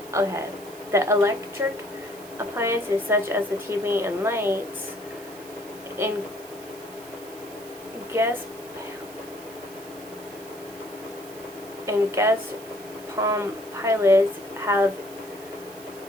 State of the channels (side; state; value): right; noise; hiss, 19 dB below the sound